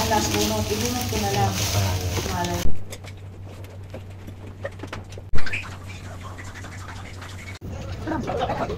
bunot, ibunot ko na lang.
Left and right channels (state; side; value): identical; both; correlation 1.00